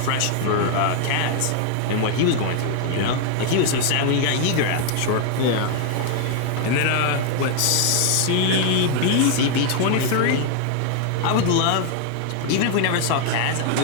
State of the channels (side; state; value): both; different; correlation 0.00